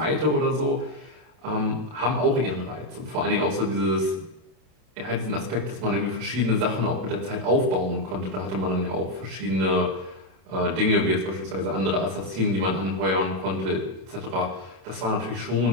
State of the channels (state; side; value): late; left; 32 ms